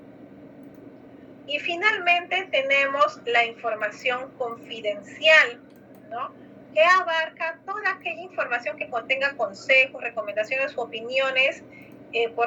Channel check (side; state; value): both; identical; correlation 1.00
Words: Y finalmente tenemos la información confidencial, ¿no? Que abarca toda aquella información que contenga consejos, recomendaciones u opiniones